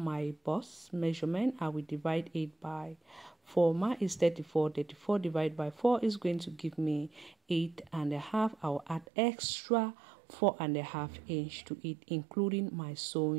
my bust measurement. I will divide it by 4. Mine is 34. 34 divided by 4 is going to give me 8.5. I'll add extra 4.5 inch to it, including my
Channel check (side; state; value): left; drops out; at 9.1 s